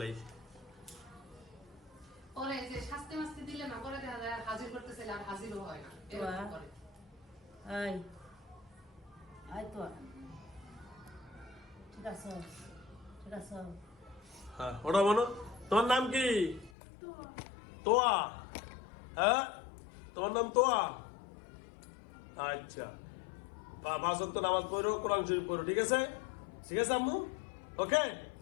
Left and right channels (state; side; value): drops out; right; at 16.7 s